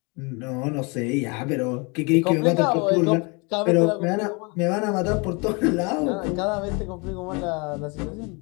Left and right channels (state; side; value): quieter; right; 30.4 dB